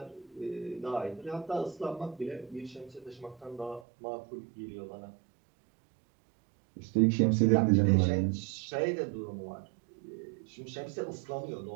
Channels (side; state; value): left; drops out; at 3.9 s